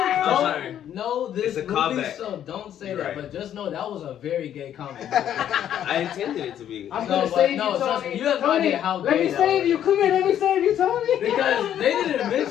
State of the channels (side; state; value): right; quieter; 10.4 dB